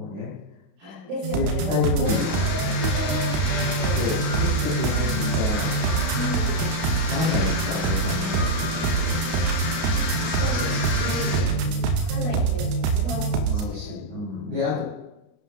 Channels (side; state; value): left; late; 32 ms